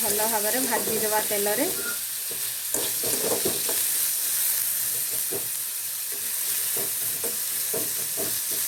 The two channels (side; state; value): both; identical; correlation 1.00